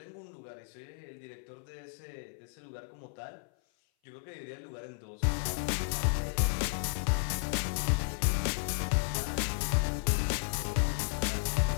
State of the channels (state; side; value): silent; right; 55 dB below the other